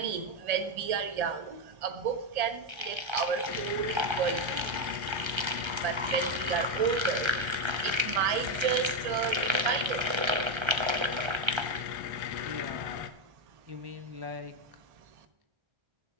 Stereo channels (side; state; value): left; late; 1.3 ms